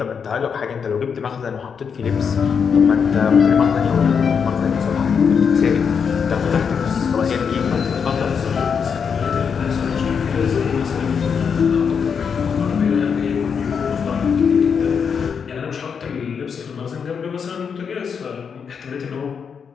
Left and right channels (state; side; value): quieter; right; 6.5 dB